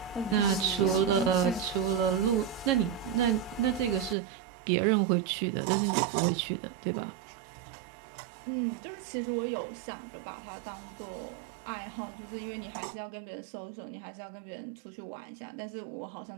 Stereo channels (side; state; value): left; drops out; at 4.2 s